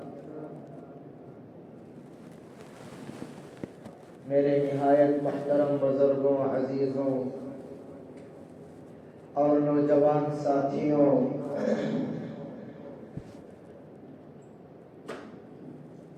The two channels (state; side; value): identical; both; correlation 1.00